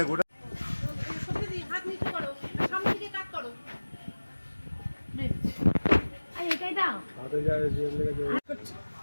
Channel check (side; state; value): both; inverted; correlation -1.00